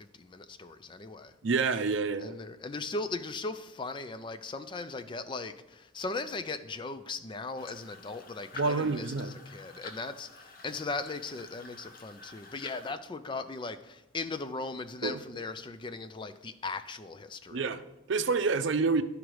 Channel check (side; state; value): both; normal; correlation 0.08